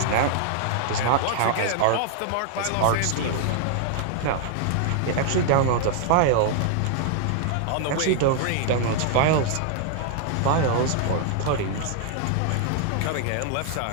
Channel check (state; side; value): different; both; correlation 0.00